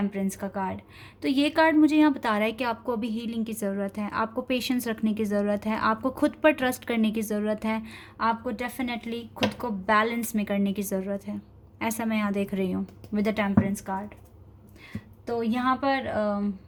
का कार्ड। तो ये कार्ड मुझे यहाँ बता रहा है कि आपको अभी हीलिंग की ज़रूरत है, आपको पेशेंस रखने की ज़रूरत है, आपको खुद पर ट्रस्ट करने की ज़रूरत है, आपको डेफिनेटली खुद को बैलेंस में करने की ज़रूरत है। ऐसा मैं यहाँ देख रही हूँ विद द टेम्परेंस कार्ड। तो यहाँ पर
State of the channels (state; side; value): identical; both; correlation 1.00